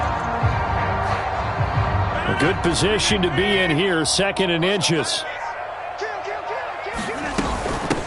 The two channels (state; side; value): identical; both; correlation 1.00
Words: Good position to be in here, 2nd and inches.